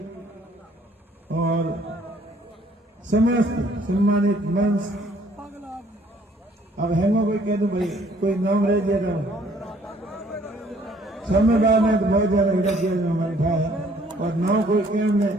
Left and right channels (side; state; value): both; normal; correlation 0.61